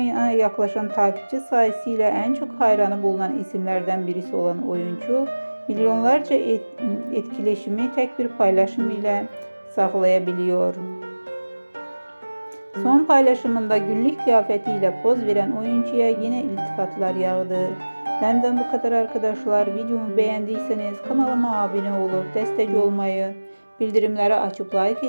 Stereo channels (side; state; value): both; inverted; correlation -1.00